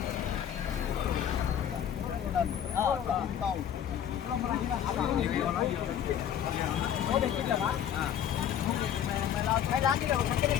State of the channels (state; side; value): quieter; right; 9.6 dB